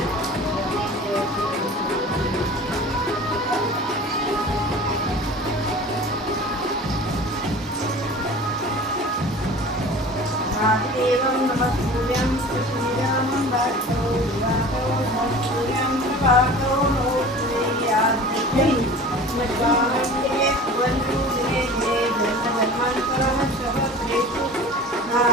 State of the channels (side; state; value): both; normal; correlation 0.40